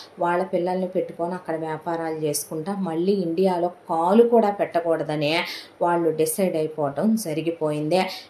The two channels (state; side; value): identical; both; correlation 1.00